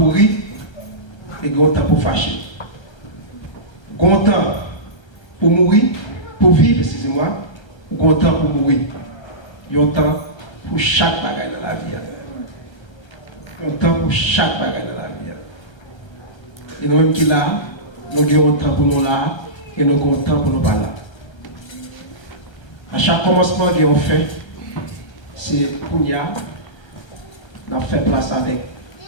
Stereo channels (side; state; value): right; late; 1.3 ms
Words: rire et il y a un temps pour fâcher. Il y a un temps pour mourir, pour vivre, excusez-moi, il y a un temps pour mourir. Il y a un temps pour chaque bagaille dans la vie. Il y a un temps pour chaque bagaille dans la vie. Et nous-mêmes qui là, nous avons un temps pour nous là, et nous avons un temps pour nous pas là. À chaque commencement qu'on fait, c'est pour nous, on fait place avec